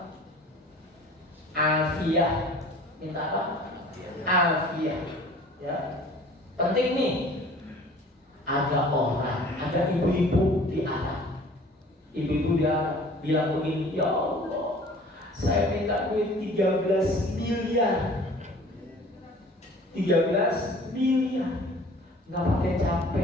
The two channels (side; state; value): both; normal; correlation 0.48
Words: Afiah. Minta apa? Afiah. Ya. Penting nih. Ada orang, ada ibu-ibu di Arab. Ibu-ibu dia bilang begini, ya Allah, saya minta duit 13 miliar. 13 miliar. Nggak pakai